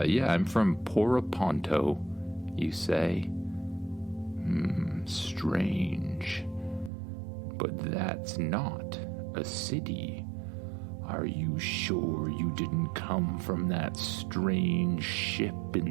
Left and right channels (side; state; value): left; drops out; at 6.9 s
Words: I'm from Poraponto, you say. Strange. But that's not a city. Are you sure you didn't come from that strange ship